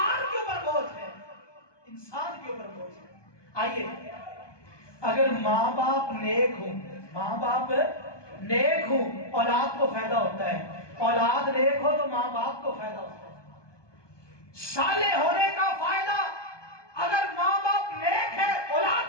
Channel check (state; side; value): late; right; 1.2 ms